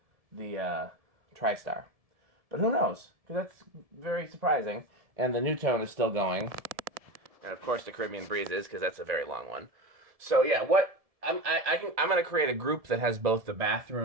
the TriStar. But who knows? Because that's very surprising. And the Nutone is still going. And of course the Caribbean Breeze is, because that's a very long one. So yeah, I'm going to create a group that has both the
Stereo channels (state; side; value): late; left; 1.7 ms